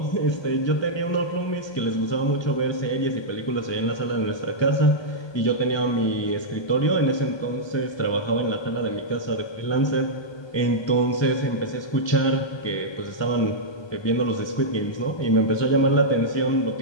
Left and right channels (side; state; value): right; late; 1.2 ms